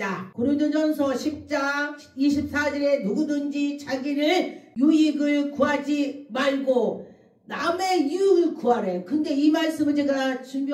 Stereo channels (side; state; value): both; identical; correlation 1.00